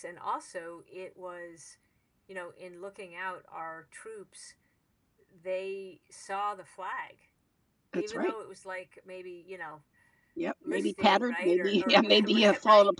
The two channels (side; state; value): both; identical; correlation 1.00